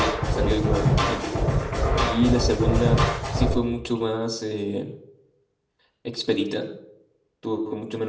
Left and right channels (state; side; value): identical; both; correlation 1.00